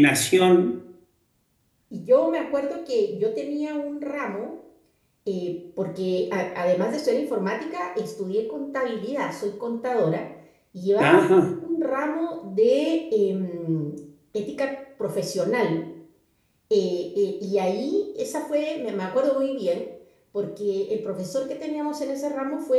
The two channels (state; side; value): identical; both; correlation 1.00